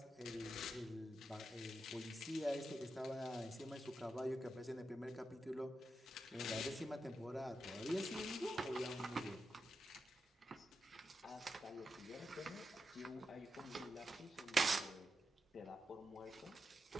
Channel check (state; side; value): normal; both; correlation 0.87